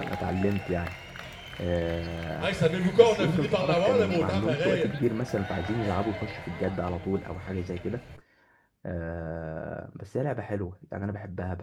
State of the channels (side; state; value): both; identical; correlation 1.00